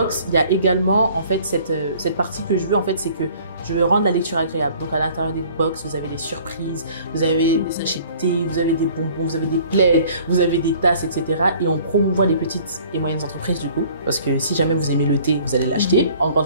il y a également en fait cette partie que je veux en fait, c'est que je veux rendre la lecture agréable. Donc à l'intérieur des box, vous avez des surprises, vous avez des sachets de thé, vous avez des bonbons, vous avez des plaids, vous avez des tasses, etc. Et on promouvoit les petites et moyennes entreprises du coup, parce que si jamais vous aimez le thé, vous allez l'acheter en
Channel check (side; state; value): both; inverted; correlation -0.53